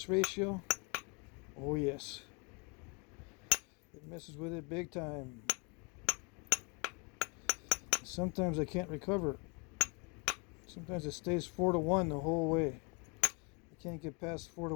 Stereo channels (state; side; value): quieter; right; 32.9 dB